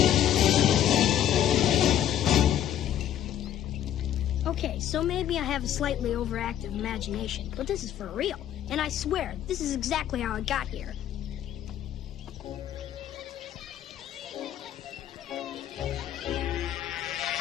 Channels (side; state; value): right; quieter; 10.9 dB